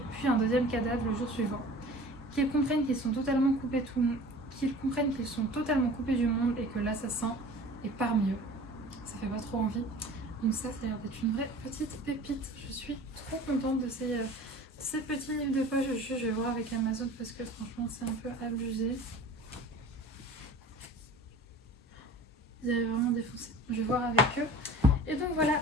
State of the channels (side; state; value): both; normal; correlation 0.42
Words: puis un deuxième cadavre le jour suivant. Qu'ils comprennent qu'ils sont totalement coupés du monde et que l'assassin est parmi eux. Ça fait pas trop envie. Donc ça a l'air d'être une vraie petite pépite. Je suis trop contente de ces petits livres de poche. Je vais voir avec Amazon parce que franchement c'est un peu abusé. Ils avaient vraiment défoncé. Je vais voir avec eux. Et donc voilà